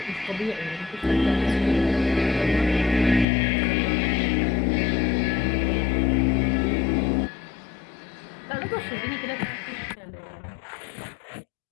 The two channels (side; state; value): right; drops out; at 3.2 s